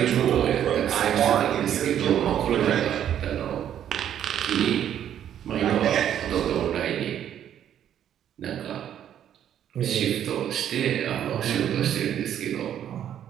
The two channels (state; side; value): quieter; left; 10.2 dB